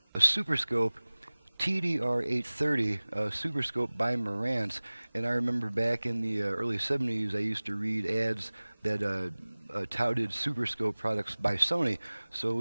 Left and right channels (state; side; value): inverted; both; correlation -1.00